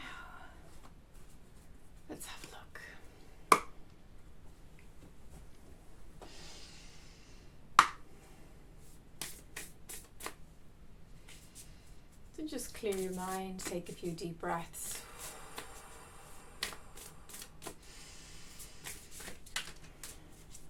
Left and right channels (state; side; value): identical; both; correlation 1.00